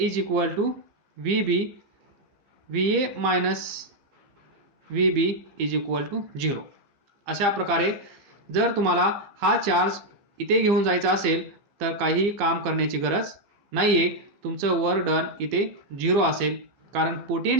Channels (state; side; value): late; left; 15 ms